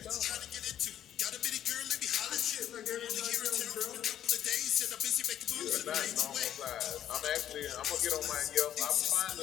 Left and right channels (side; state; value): right; quieter; 11.0 dB